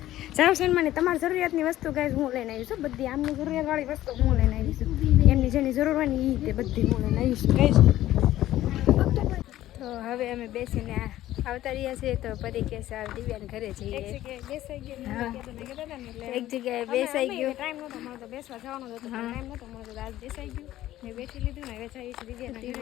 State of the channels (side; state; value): right; quieter; 14.2 dB